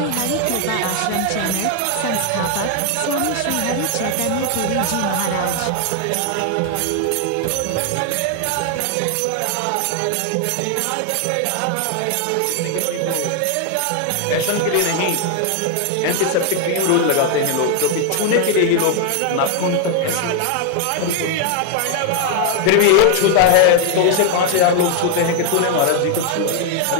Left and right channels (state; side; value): different; both; correlation 0.00